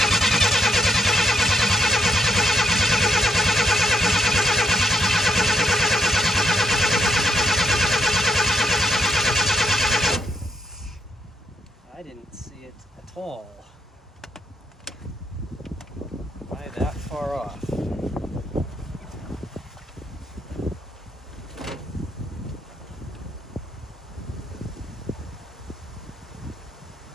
I didn't see it at all. Why that far off?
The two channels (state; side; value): normal; both; correlation 0.75